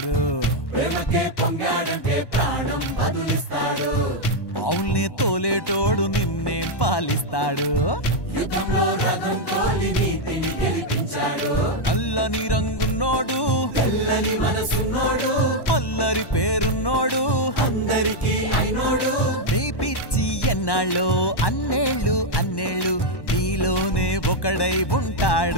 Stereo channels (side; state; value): right; late; 1.1 ms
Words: ప్రేమకే పొంగాడంటే ప్రాణం బదులిస్తాడు. ఆవుల్ని తోలేటోడు నిన్నేం పాలిస్తాడు. యుద్ధంలో రథం తోలి నీతిని గెలిపించాడు. నల్లని రంగున్నోడు తెల్లని మనసున్నోడు. అల్లరి పేరున్నోడు అందరికీ అయినోడు. నీ పిచ్చి ఎన్నాళ్ళో అన్నేళ్ళు అన్నేళ్ళు నీలోనే ఒకడై